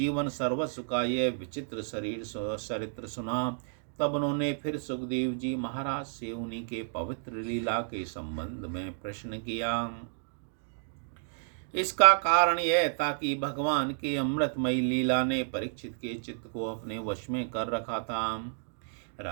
सर्वस्व का यह विचित्र चरित्र सुना, तब उन्होंने फिर सुखदेव जी महाराज से उन्हीं के पवित्र लीला के संबंध में प्रश्न किया। इसका कारण यह था कि भगवान के अमृतमयी लीला ने परीक्षित के चित्त को अपने वश में कर रखा था।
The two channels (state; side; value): silent; left; digital silence